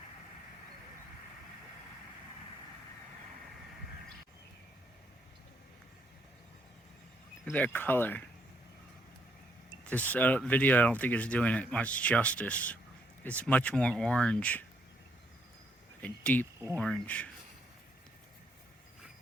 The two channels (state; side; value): normal; both; correlation 0.73